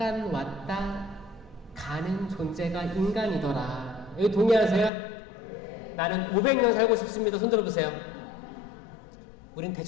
왔다 가는 존재가 인간이더라. 여기 동의하세요? 네. 나는 500년 살고 싶습니다. 손 들어보세요. 우린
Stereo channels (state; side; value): drops out; right; at 4.9 s